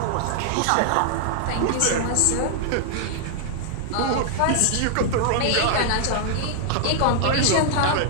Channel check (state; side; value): different; both; correlation 0.00